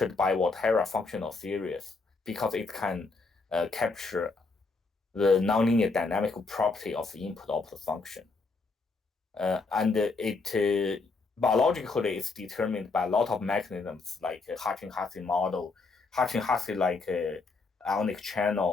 by Volterra functional series because it can capture the nonlinear dynamical property of the input-output function. And it biologically is determined by a lot of mechanisms like Hsieh model, Hsieh like ionic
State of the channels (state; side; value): quieter; right; 4.0 dB